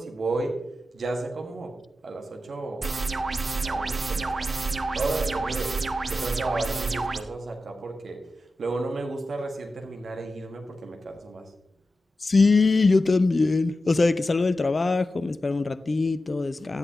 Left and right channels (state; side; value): normal; both; correlation 0.92